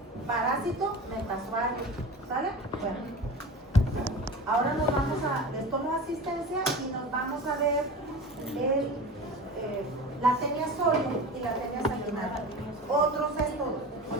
parásito metasuario. ¿Sale? Bueno. Ahora nos vamos a, les tomo asistencia y nos vamos a ver la tenia sólida y la tenia sanguinaria. Otros céstodos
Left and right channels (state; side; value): normal; both; correlation 0.33